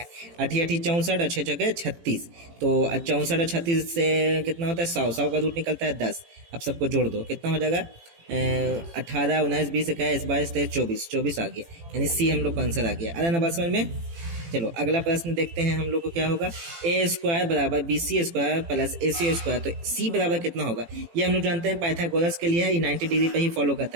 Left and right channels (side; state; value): left; late; 18 ms